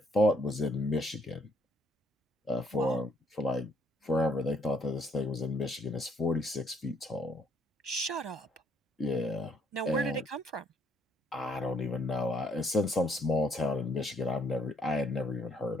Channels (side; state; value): both; normal; correlation 0.69